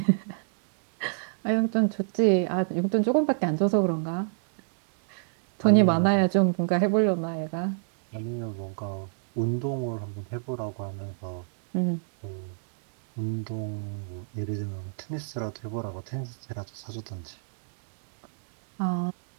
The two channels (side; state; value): left; silent; digital silence